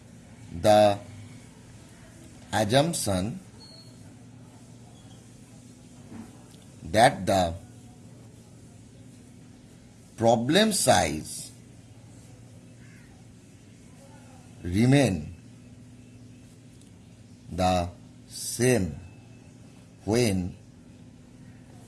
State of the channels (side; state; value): both; identical; correlation 1.00